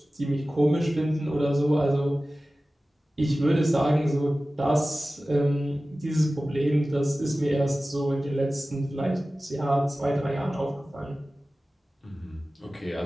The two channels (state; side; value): normal; both; correlation 0.96